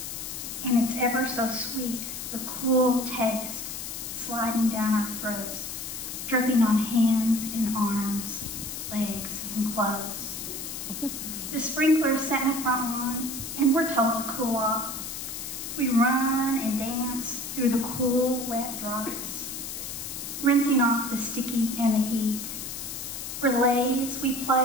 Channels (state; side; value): noise; left; hiss, 7 dB below the sound